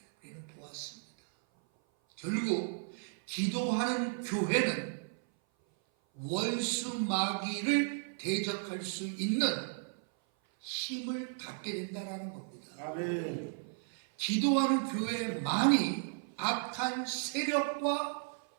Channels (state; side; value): silent; left; 55 dB below the other